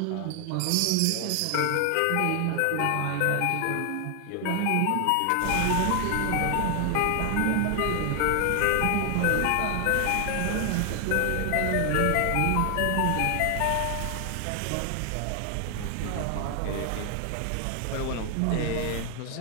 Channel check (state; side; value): different; both; correlation 0.00